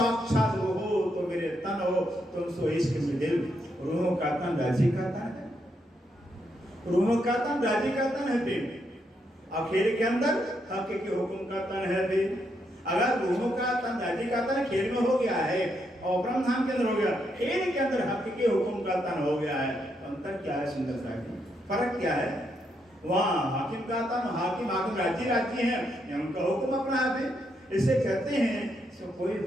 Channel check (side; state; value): both; normal; correlation 0.79